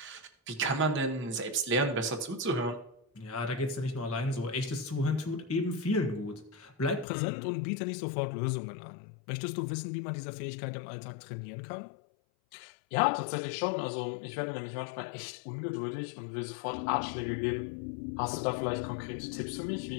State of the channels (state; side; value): drops out; right; at 7.1 s